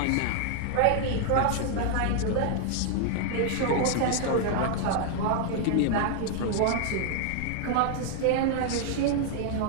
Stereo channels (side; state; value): both; different; correlation 0.00